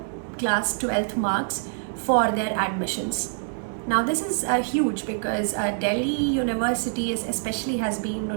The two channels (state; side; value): silent; left; digital silence